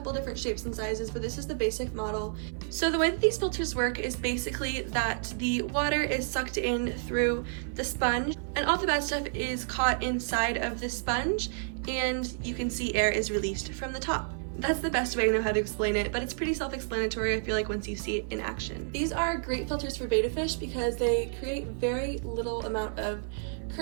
different shapes and sizes, but this is the basic model. So the way that these filters work is basically that the water is sucked in through the sponge and all the bad stuff is caught inside of the sponge, and you can see air is released from the top. That's the best way I know how to explain it, but it's pretty self-explanatory, I feel like, once you see it in action. These are great filters for betta fish because they create very little amount of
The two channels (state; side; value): silent; left; 56 dB below the other